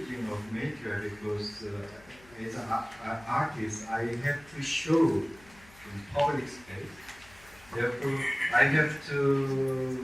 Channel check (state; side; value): noise; left; hum, 25 dB below the sound